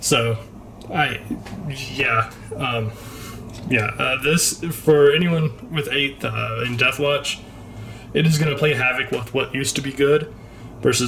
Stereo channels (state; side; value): identical; both; correlation 1.00